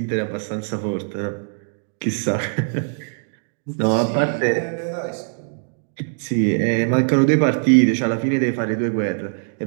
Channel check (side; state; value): left; silent; digital silence